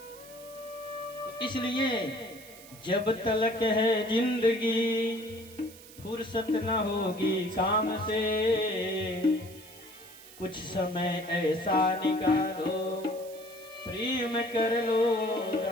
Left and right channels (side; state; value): right; noise; hiss, 19 dB below the sound